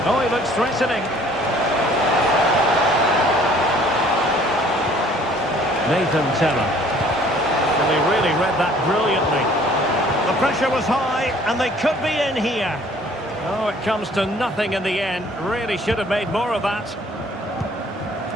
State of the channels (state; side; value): normal; both; correlation 0.56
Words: Oh, he looks threatening. Nathan Teller. Well, he really read that brilliantly. The pressure was high, and they could be in here. Oh, it comes to nothing in the end. Really should have made more of that.